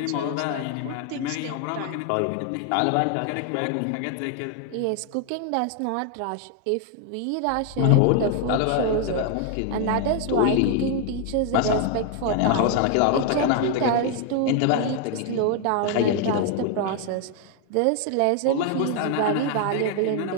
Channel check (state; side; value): different; both; correlation 0.00